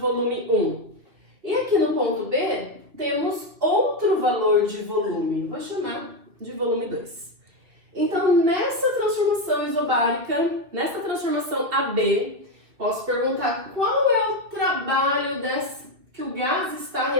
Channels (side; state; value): left; late; 2.8 ms